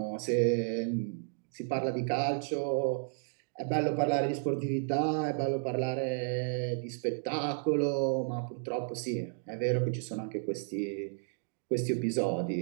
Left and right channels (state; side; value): silent; left; digital silence